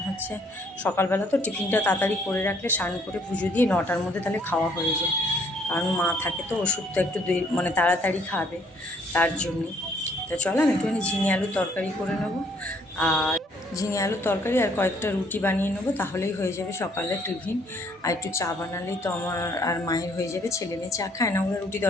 সকালবেলা তো টিফিনটা তাড়াতাড়ি করে রাখলে স্নান করে পুজো দিয়ে 9টার মধ্যে তাহলে খাওয়া হয়ে যায়। কারণ মা থাকে তো, ওষুধটা একটু তাড়াতাড়ি খাবে, তার জন্যই। তো চলো আমি একটুখানি ঝিঙে আলুর তরকারি করে নেবো, আর ঝিঙে আলুর তরকারি আর কয়েকটা রুটি বানিয়ে নেবো, তাহলেই হয়ে যাবে সকালের টিফিন। আর একটু চা বানালেই তো আমার আর মায়ের হয়ে যাবে। ছেলে মেয়ে চা খায় না, ওরা রুটি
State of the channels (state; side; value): normal; both; correlation 0.64